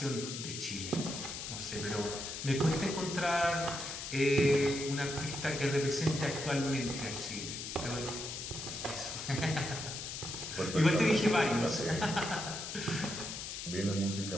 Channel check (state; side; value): noise; left; hiss, 7 dB below the sound